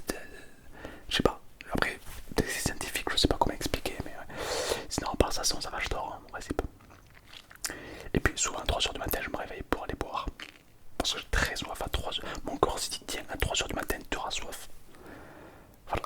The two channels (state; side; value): identical; both; correlation 1.00